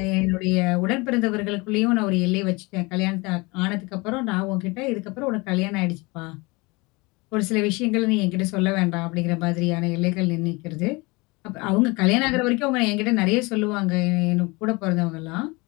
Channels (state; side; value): quieter; right; 25.5 dB